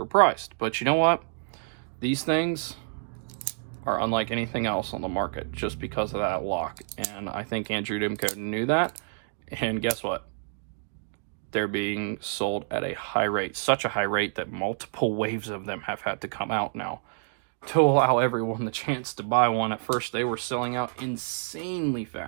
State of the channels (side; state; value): left; silent; digital silence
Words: But you know what? These things are unlike anything else on the market just because of that lock. And I think Andrew Demko knew that. And guess what? They're being sold at a high rate, such a high rate that multiple waves of them have had to come out now to allow everyone the chance to buy one. At first, they were selling out insanely